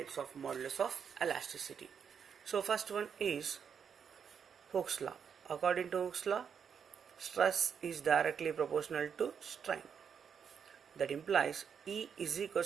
of modulus of elasticity. So first one is Hooke's law. According to Hooke's law, stress is directly proportional to strain. That implies E is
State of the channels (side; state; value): left; quieter; 7.1 dB